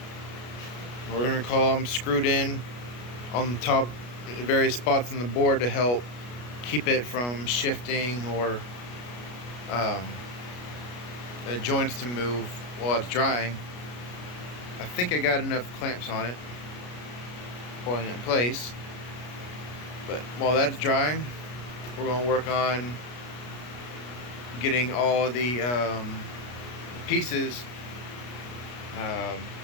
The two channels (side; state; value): right; late; 33 ms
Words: we're going to call them, screwed in on the top various spots on the board to help keep it from shifting or the joints to move while it's drying. I think I got enough clamps on it holding it in place, but while that's drying, we're going to work on getting all the pieces